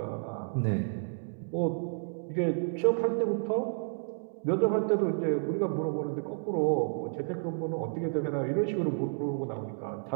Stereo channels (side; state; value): left; silent; digital silence